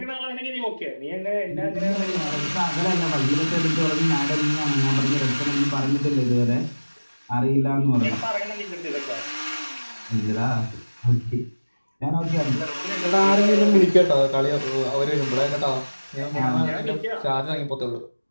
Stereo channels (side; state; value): both; inverted; correlation -1.00